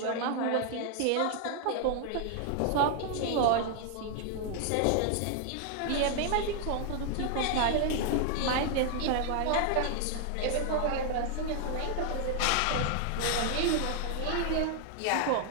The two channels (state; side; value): different; both; correlation 0.00